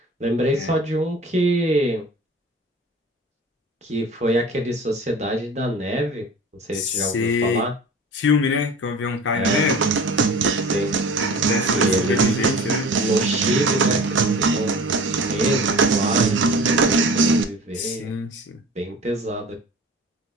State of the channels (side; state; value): both; normal; correlation 0.40